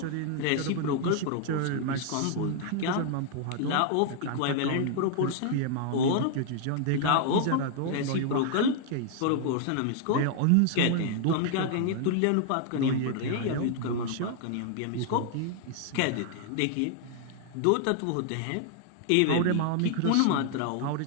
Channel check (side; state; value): both; different; correlation 0.00